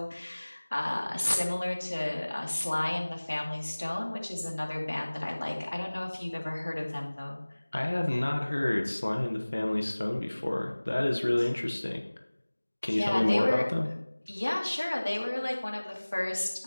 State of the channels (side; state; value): both; inverted; correlation -1.00